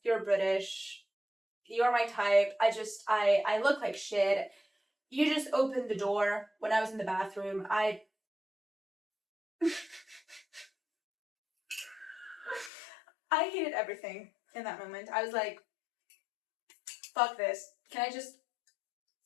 you're British, you're my type. I look like shit. You just opened the door when I was in the bathroom. I hated everything in that moment. I was like, fuck this. Can I just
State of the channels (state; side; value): drops out; right; at 12.7 s